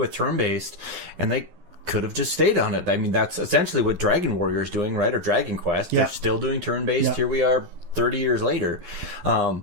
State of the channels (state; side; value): late; left; 12 ms